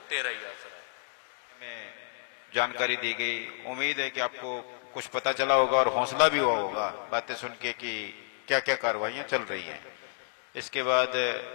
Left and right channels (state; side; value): silent; right; digital silence